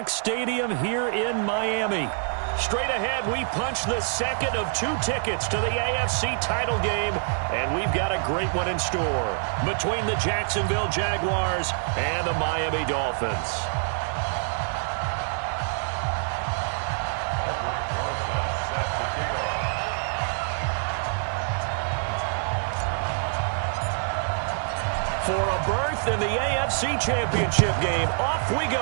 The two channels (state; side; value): silent; left; 61 dB below the other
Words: Stadium here in Miami. Straight ahead, we punch the second of 2 tickets to the AFC title game, and we've got a great one in store between the Jacksonville Jaguars and the Miami Dolphins. For a berth in the AFC Championship game, off we